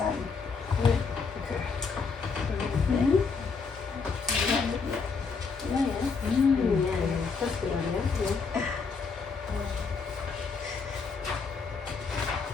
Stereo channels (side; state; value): right; quieter; 5.0 dB